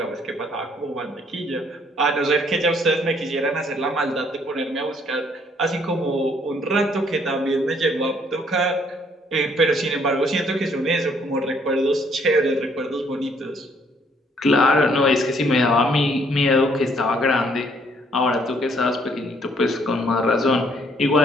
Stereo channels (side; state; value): both; normal; correlation 0.65